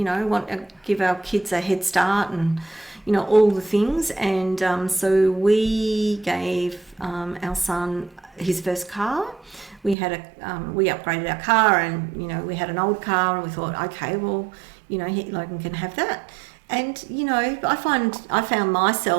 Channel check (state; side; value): drops out; left; at 10.0 s